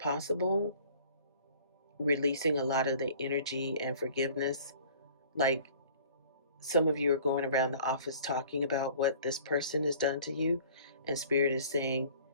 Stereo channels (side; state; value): both; inverted; correlation -0.50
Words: releasing a lot of the energy and forgiveness. Like some of you are going around the office talking about what this person has done to you, and Spirit is saying,